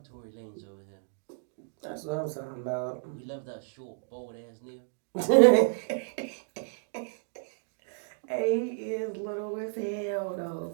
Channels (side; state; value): left; silent; digital silence